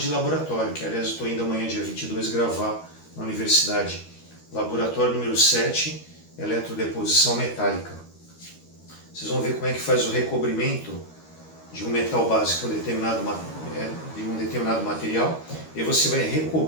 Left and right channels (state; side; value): late; right; 13 ms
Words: laboratório, que aliás eu estou indo amanhã, dia 22, gravar na universidade. Laboratório número 7, eletrodeposição metálica. Vocês vão ver como é que faz o recobrimento de um metal básico de um determinado material, e você vai